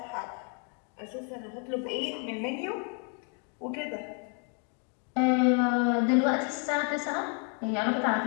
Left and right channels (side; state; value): right; quieter; 39.3 dB